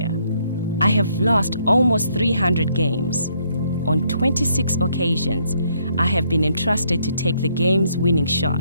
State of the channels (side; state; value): both; inverted; correlation -0.70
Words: I have lost almost 300 games. On 26 occasions, I have been entrusted to take the game's winning